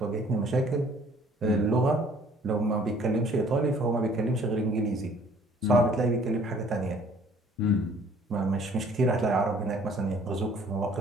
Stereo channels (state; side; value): normal; both; correlation 0.56